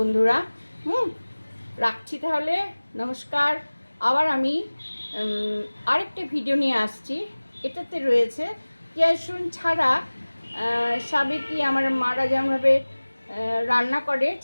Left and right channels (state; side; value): inverted; both; correlation -1.00